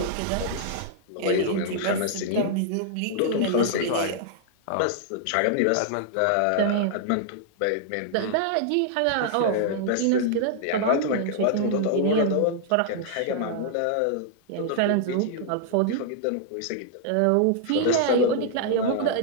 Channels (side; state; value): both; different; correlation -0.01